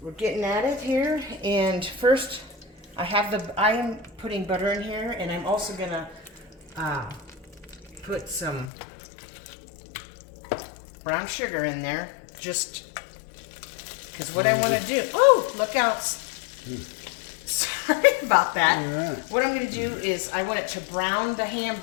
we're getting at it here, and first I am putting butter in here, and I'm also going to put some brown sugar in there, just because what I want to do. Oh, look out! Sorry about that. Yeah. What I'm going to do is I want it to brown the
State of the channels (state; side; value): drops out; right; at 8.7 s